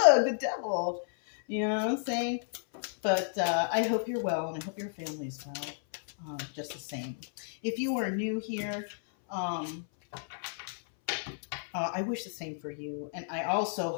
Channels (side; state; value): right; silent; 56 dB below the other